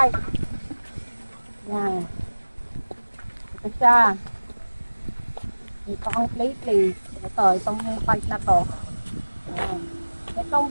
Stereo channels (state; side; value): inverted; both; correlation -1.00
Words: Yan. Ito siya. Ito ang clay plate. Ito, itong part na to. Yan.